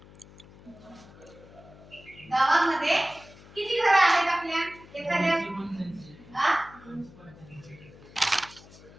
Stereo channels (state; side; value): noise; left; hum, 21 dB below the sound